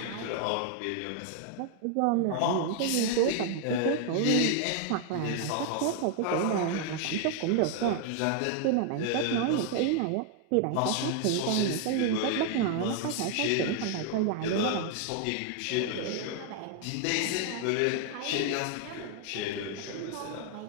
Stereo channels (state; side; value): different; both; correlation 0.00